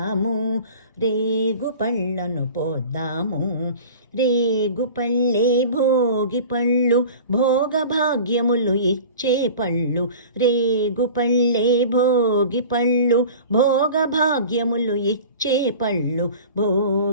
రేగు పళ్ళను పోద్దాము. రేగు పళ్ళే భోగి పళ్ళు, భోగ భాగ్యములు ఇచ్చే పళ్ళు. రేగు పళ్ళే భోగి పళ్ళు, భోగ భాగ్యములు ఇచ్చే పళ్ళు.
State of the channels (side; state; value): both; inverted; correlation -0.40